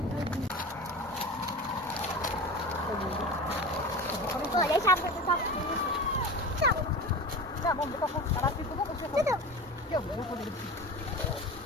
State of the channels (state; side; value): normal; both; correlation 0.32